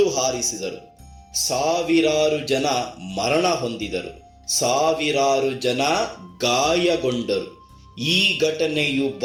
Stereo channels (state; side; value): identical; both; correlation 1.00